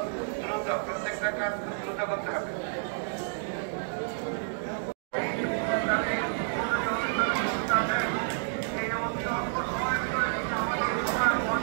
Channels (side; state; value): left; silent; digital silence